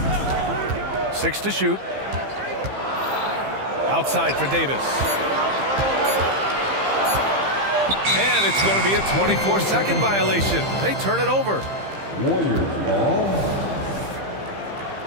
6 to shoot. Outside for Davis. And it's going to be a 24-second violation. They turn it over. Warriors ball.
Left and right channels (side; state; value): left; late; 15 ms